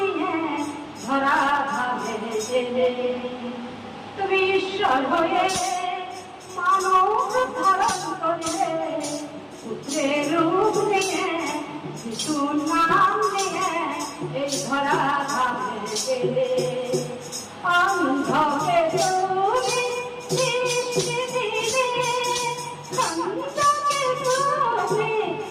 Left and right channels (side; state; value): both; identical; correlation 1.00